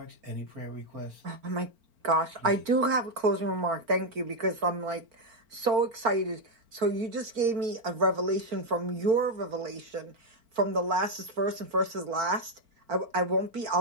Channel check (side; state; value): left; late; 4.4 ms